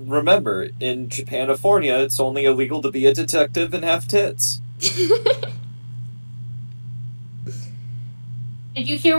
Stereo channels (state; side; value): inverted; both; correlation -1.00